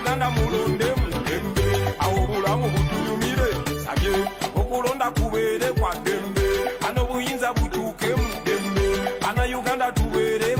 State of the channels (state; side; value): identical; both; correlation 1.00